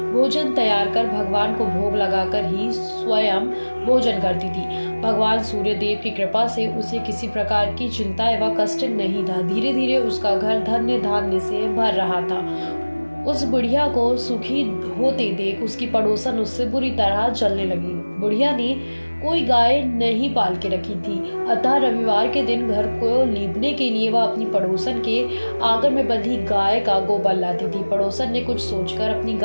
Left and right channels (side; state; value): both; inverted; correlation -1.00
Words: भोजन तैयार कर भगवान को भोग लगाकर ही स्वयं भोजन करती थी। भगवान सूर्य देव की कृपा से उसे किसी प्रकार की चिंता एवं कष्ट नहीं था। धीरे धीरे उसका घर धन्य धान्य से भर रहा था। उस बुढ़िया को सुखी होते देख उसकी पड़ोसन उससे बुरी तरह जलने लगी। बुढ़िया ने कोई गाय नहीं पाल के रखी थी, अतः रविवार के दिन घर को लीपने के लिए वह अपनी पड़ोसन के आंगन में बंधी गाय का गोबर लाती थी। पड़ोसन ने कुछ सोचकर अपनी